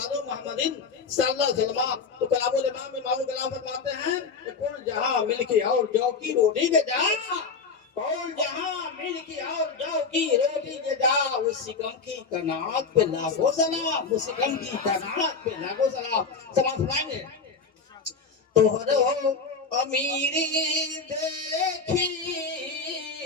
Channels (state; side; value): quieter; right; 4.9 dB